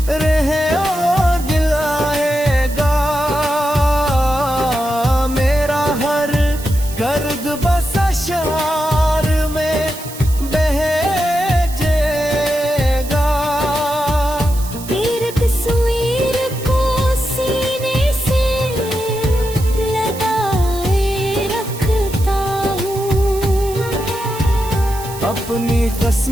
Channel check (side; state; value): right; noise; hiss, 14 dB below the sound